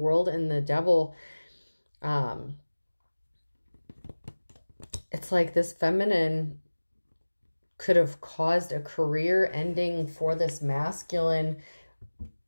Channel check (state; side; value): inverted; both; correlation -1.00